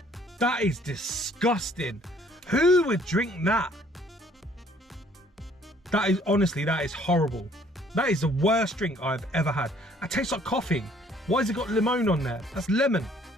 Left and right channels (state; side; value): normal; both; correlation 0.60